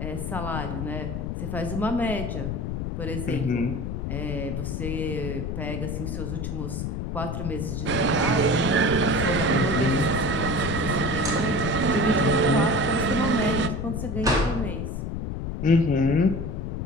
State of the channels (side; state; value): left; noise; rumble, 3 dB below the sound